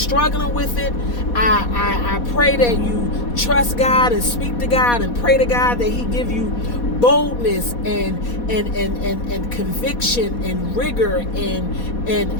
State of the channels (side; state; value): right; late; 4.2 ms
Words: with it, I pray that you trust God and speak to God and pray to God that he give you boldness and conviction and rigor and